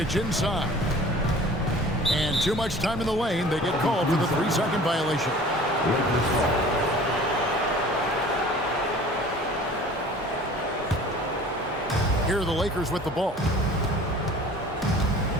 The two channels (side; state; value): both; normal; correlation 0.46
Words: inside. And too much time in the lane. They get called for the 3-second violation. Here are the Lakers with the ball.